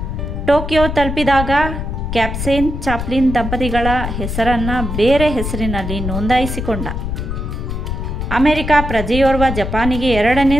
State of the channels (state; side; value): noise; left; rumble, 4 dB below the sound